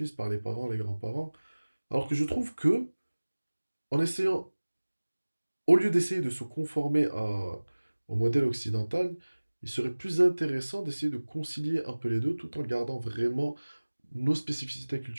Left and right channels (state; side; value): inverted; both; correlation -1.00